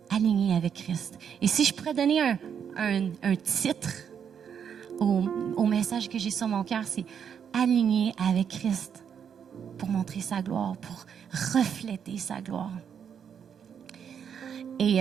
aligné avec Christ. Et si je pourrais donner un titre au message que j'ai sur mon cœur, c'est aligné avec Christ pour montrer sa gloire, pour refléter sa gloire.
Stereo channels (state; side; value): quieter; left; 7.8 dB